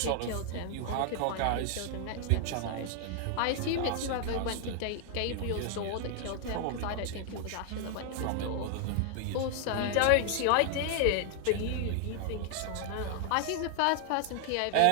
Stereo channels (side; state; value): both; different; correlation 0.00